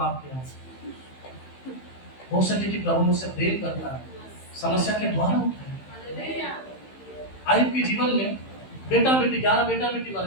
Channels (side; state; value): right; late; 15 ms